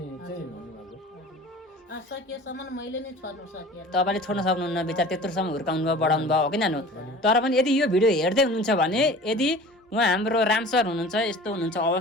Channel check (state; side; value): normal; both; correlation 0.41